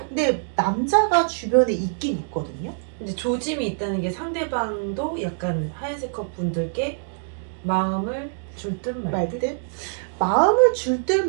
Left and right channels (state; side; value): silent; left; digital silence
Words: 근데 남자가 주변에 있긴 있거든요. 근데 조짐이 있다는 게 상대방도 약간 하얀색 컵 분들께 마음을 줄 듯 말 듯? 말듯 마음을 줄 듯